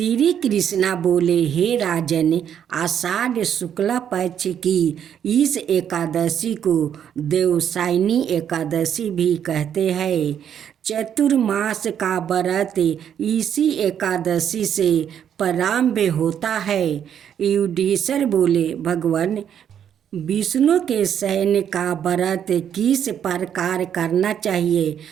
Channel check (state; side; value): quieter; left; 9.0 dB